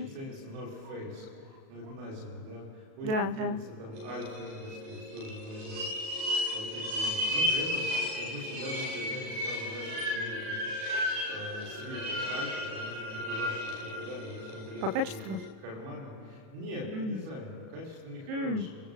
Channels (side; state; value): left; late; 37 ms